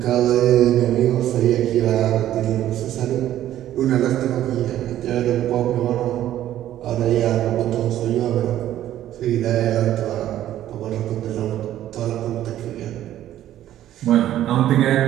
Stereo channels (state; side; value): quieter; left; 12.5 dB